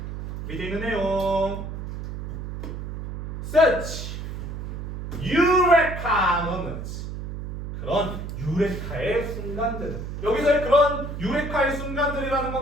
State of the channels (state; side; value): noise; right; hum, 7 dB below the sound